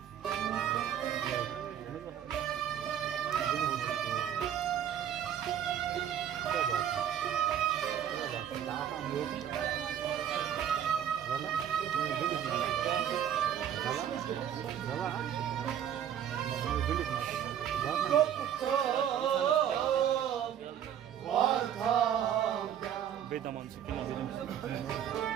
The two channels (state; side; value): quieter; left; 9.7 dB